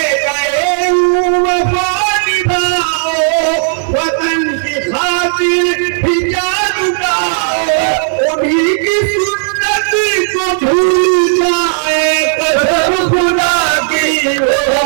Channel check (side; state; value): left; silent; digital silence